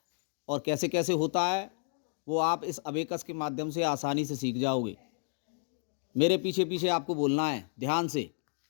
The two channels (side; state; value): right; silent; digital silence